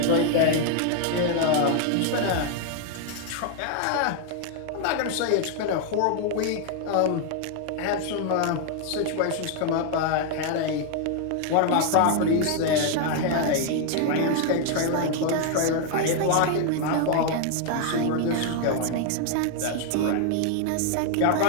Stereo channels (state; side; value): different; both; correlation 0.00